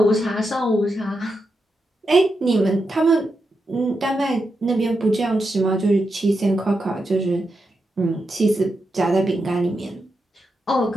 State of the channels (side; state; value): both; normal; correlation 0.86